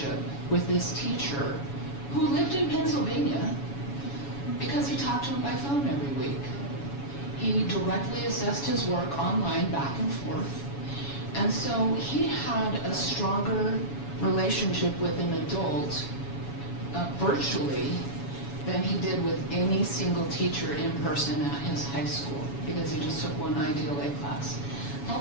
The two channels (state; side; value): late; right; 7.1 ms